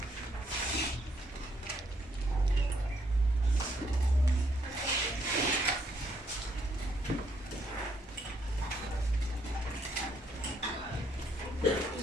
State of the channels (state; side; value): normal; both; correlation 0.71